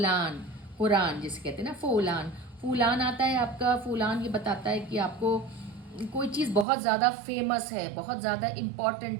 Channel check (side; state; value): left; drops out; at 6.7 s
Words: कुरान जिसे कहते हैं ना, फूलान। फूलान आता है आपका, फूलान ये बताता है कि आपको कोई चीज़ बहुत ज़्यादा फेमस है, बहुत ज़्यादा